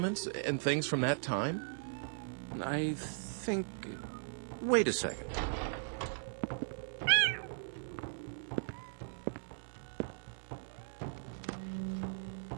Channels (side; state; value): left; silent; digital silence